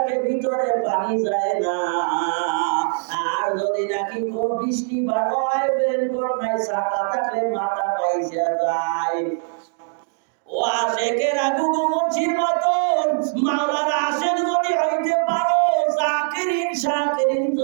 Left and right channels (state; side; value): silent; left; digital silence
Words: ভিতরে পানি যায় না। আর যদি নাকি কোন বৃষ্টি ভালো হয়, রেইনকোট নাই, ছাতা থাকলে মাথা পাইসা যায়। ও আশেকের আগু মুছির মতন মাওলার আশেক যদি হইতে পারো, জাকিরিন শাকিরিন